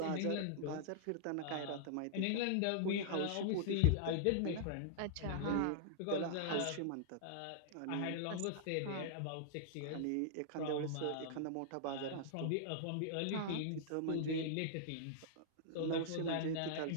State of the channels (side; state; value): both; different; correlation -0.01